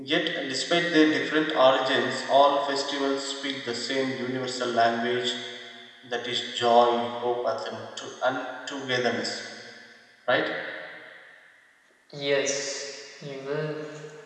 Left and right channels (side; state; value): both; identical; correlation 1.00